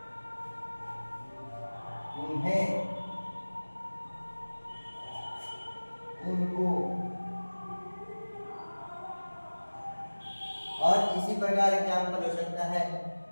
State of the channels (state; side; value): inverted; both; correlation -1.00